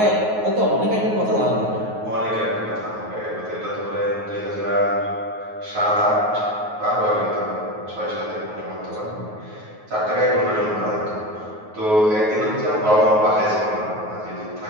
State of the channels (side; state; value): left; late; 9.4 ms